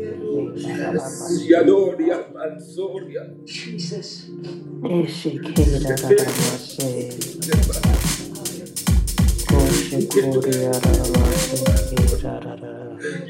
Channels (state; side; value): identical; both; correlation 1.00